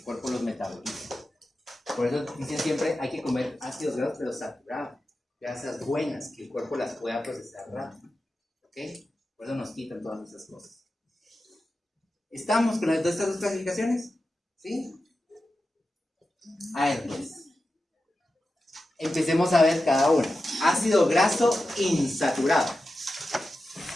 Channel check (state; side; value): normal; both; correlation 0.92